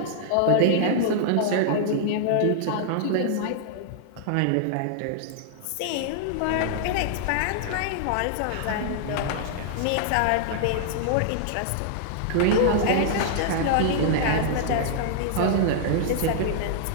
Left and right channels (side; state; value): both; different; correlation -0.01